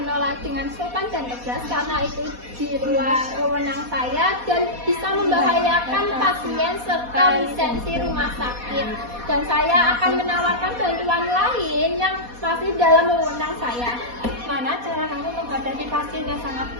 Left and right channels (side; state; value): left; late; 4.2 ms